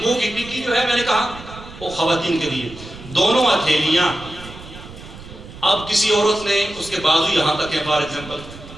کی ٹکی جو ہے، میں نے کہا وہ خواتین کے لیے، دونوں ہتھیلیاں۔ اب کسی عورت نے اس کے بازو یہاں تک ہے، فار ایگزامپل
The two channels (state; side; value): noise; right; rumble, 16 dB below the sound